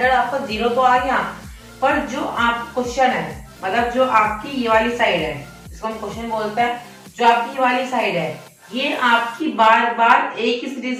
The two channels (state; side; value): identical; both; correlation 1.00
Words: आपका 0 तो आ गया, पर जो आप क्वेश्चन है, मतलब जो आपकी ये वाली साइड है, इसको हम क्वेश्चन बोलते हैं, जो आपकी ये वाली साइड है ये आपकी बार बार एक ही